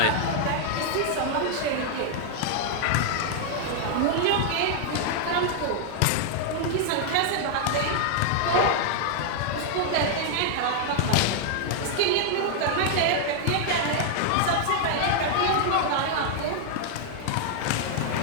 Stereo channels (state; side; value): different; both; correlation 0.00